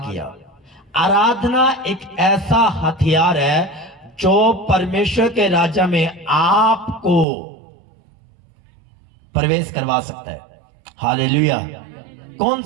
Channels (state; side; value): drops out; left; at 7.2 s